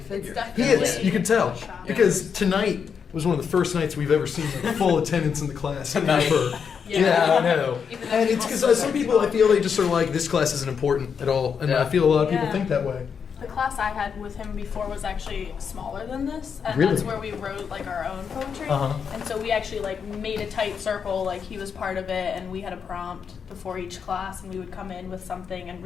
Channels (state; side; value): quieter; right; 6.7 dB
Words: He is. You can tell because tonight was one of the first nights we've ever seen like full attendance in the class ever. Yeah, I know. And it's because some people, I feel they just are like, this class isn't important at all. And I feel a lot of people think that way. The class I had with him before was actually smaller than this. And really? That's where we wrote like our own poetry. And so we actually like made a tight circle, like he was part of it, and we had a prompt before each class, and we would come in with something and